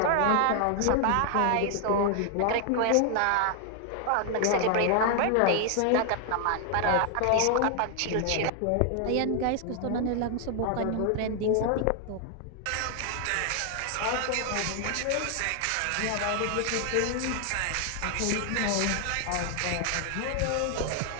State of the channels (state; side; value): different; both; correlation 0.00